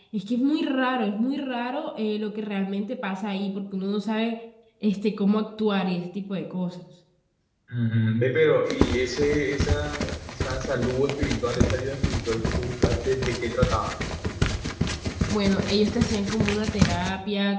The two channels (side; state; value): both; identical; correlation 1.00